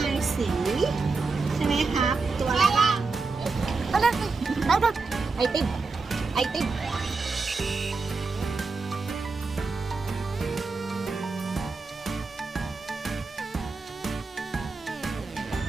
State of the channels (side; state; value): left; quieter; 4.1 dB